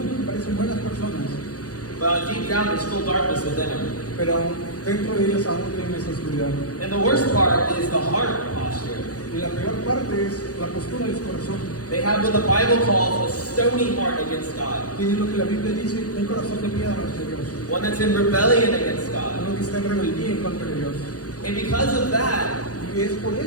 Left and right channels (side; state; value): right; late; 0.67 ms